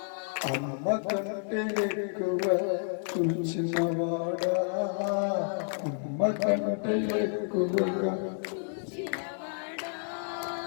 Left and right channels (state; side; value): silent; right; digital silence